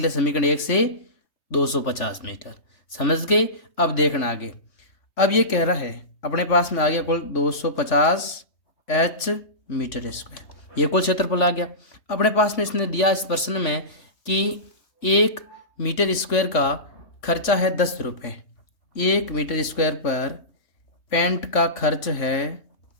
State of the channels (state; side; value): late; right; 3.5 ms